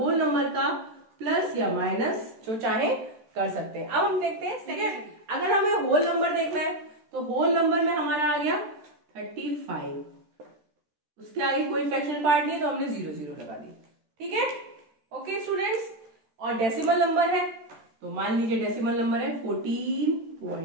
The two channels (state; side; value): late; left; 14 ms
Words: नंबर का प्लस या माइनस जो चाहे कर सकते हैं। अब हम देखते हैं, ठीक है, अगर हमें होल नंबर देखना है तो होल नंबर में हमारा आ गया 35, उसके आगे कोई फ्रैक्शन पार्ट नहीं तो हमने 0 0 लगा दी, ठीक है। ओके स्टूडेंट्स, और डेसिमल नंबर है तो मान लीजिए डेसिमल नंबर है